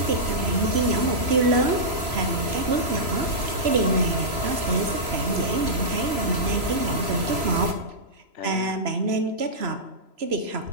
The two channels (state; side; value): late; left; 3.0 ms